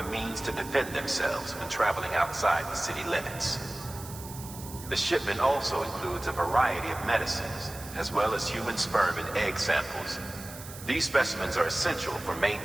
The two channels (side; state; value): right; noise; hiss, 14 dB below the sound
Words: means to defend themselves when traveling outside the city limits. The shipment also includes a variety of medicines, as well as human sperm and egg samples. These specimens are essential for